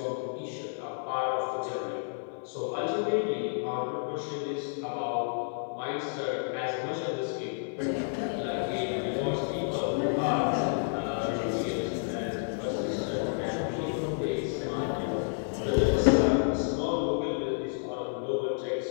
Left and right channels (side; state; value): right; silent; 57 dB below the other